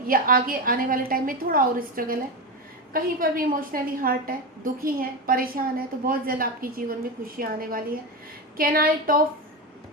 या आगे आने वाले टाइम में थोड़ा और स्ट्रगल है, कहीं पर भी इमोशनली हर्ट है, दुखी हैं, परेशान है, तो बहुत जल्द आपके जीवन में खुशियाँ आने वाली है। कैनाइट ऑफ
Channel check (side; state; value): both; normal; correlation 0.17